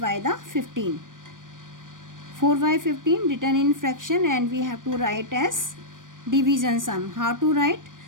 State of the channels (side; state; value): left; late; 0.88 ms